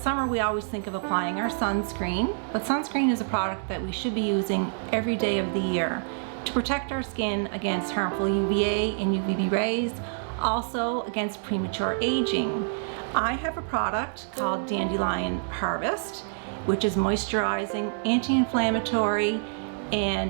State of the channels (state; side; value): silent; left; digital silence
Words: we always think of applying our sunscreen, but sunscreen is a product that we should be using every day of the year to protect our skin against harmful UVA and UVB rays, also against premature aging. I have a product called Dandelion Harvest, which is moisturizing, anti-inflammatory,